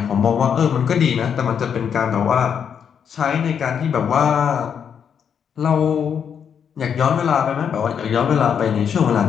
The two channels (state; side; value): quieter; right; 7.6 dB